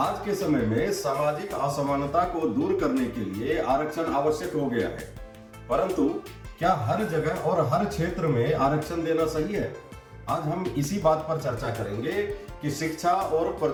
के समय में सामाजिक असमानता को दूर करने के लिए आरक्षण आवश्यक हो गया है, परंतु क्या हर जगह और हर क्षेत्र में आरक्षण देना सही है? आज हम इसी बात पर चर्चा करेंगे कि शिक्षा और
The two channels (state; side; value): identical; both; correlation 1.00